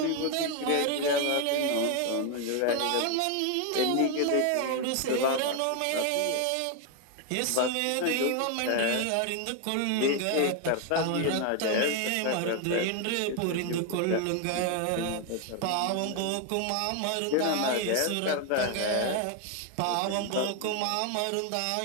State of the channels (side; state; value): both; different; correlation 0.01